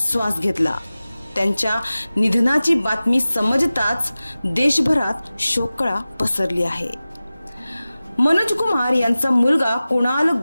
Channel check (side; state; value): both; inverted; correlation -0.97